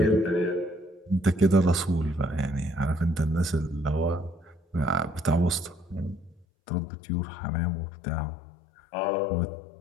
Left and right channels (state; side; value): drops out; right; at 6.5 s